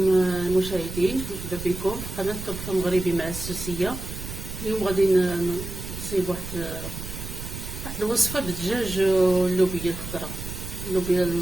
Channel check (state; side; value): noise; right; rumble, 9 dB below the sound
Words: مرحبا بكم في قناه طبخ مغربي مع السوسيه. اليوم غادي نصيب واحد الوصفه بالدجاج واللوبيا الخضراء، اللوبيا